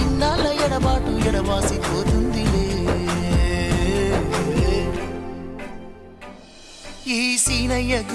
ఎడబాటు ఎడవాసిపోతుందిలే. ఈ సీనయ్య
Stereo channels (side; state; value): both; identical; correlation 1.00